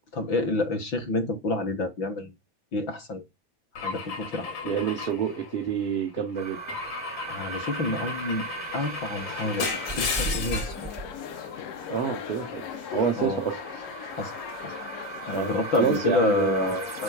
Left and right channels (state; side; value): late; right; 6.0 ms